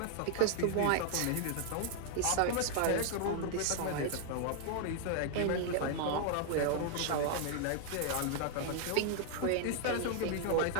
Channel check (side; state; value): both; different; correlation 0.00